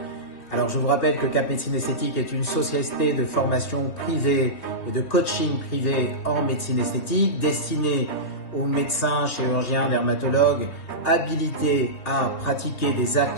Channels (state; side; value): late; right; 3.2 ms